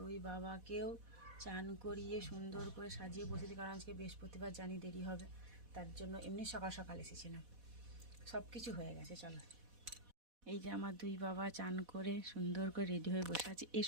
বাবাকেও চান করিয়ে সুন্দর করে সাজিয়ে বসেছি, কারণ আজকে বৃহস্পতিবার জানি দেরি হবে, তার জন্য এমনি সকাল সকাল এসেছিলাম। সব কিছু হয়ে গেছে, চলো। এই যে আমার দুই বাবা চান করে সুন্দর করে রেডি হয়ে বসে আছে। এ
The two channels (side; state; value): left; late; 4.1 ms